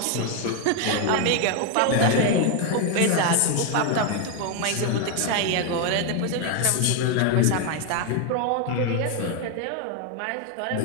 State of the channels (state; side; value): different; both; correlation 0.01